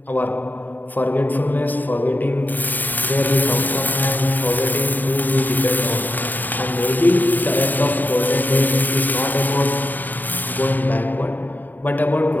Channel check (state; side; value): late; right; 0.088 ms